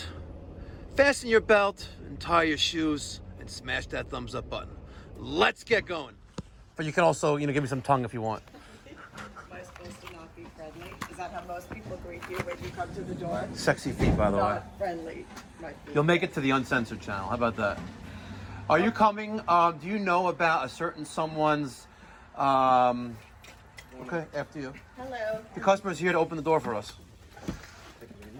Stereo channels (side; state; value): both; identical; correlation 1.00